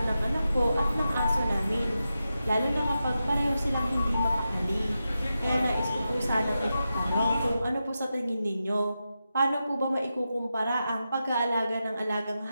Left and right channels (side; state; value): both; inverted; correlation -0.90